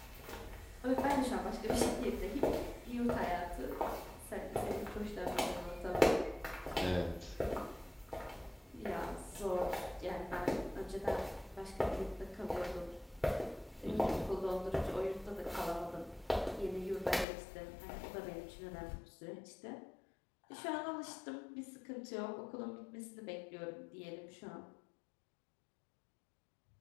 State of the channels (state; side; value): drops out; right; at 17.2 s